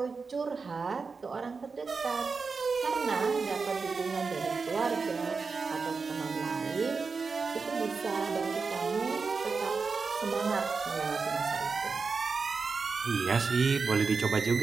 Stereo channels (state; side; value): quieter; left; 4.7 dB